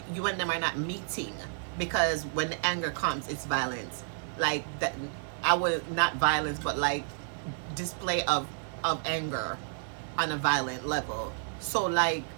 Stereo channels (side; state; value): left; silent; 57 dB below the other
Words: you and them are not meeting, because when the anger comes, it's violence. Like that, I would, not violence, but like display of anger on a violent level. So like,